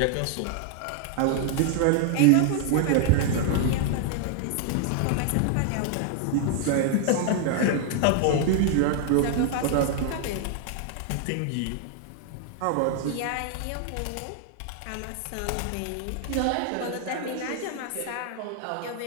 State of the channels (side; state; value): both; different; correlation 0.00